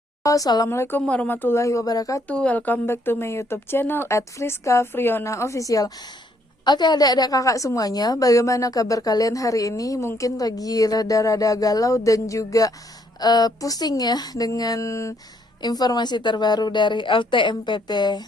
Assalamualaikum warahmatullahi wabarakatuh. Welcome back to my YouTube channel @Friska Friona Official. Oke, adik-adik kakak semuanya, bagaimana kabar kalian hari ini? Mungkin lagi rada-rada galau dan juga pusing ya dengan informasi terbaru dari LTMPT,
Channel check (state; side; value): normal; both; correlation 0.69